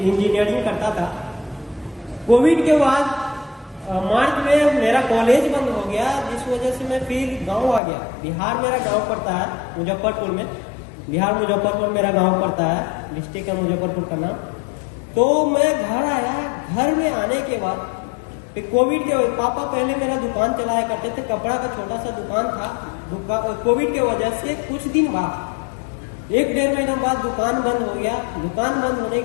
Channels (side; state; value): right; drops out; at 7.8 s